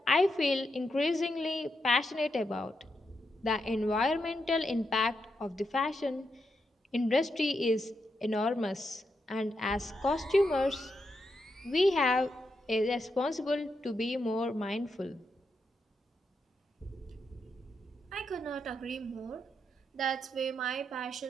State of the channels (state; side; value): normal; both; correlation 0.83